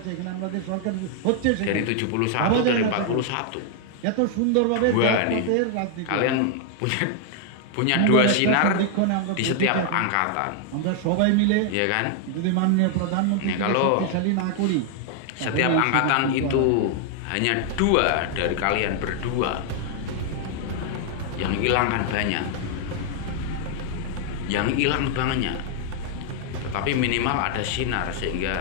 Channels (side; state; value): both; different; correlation 0.00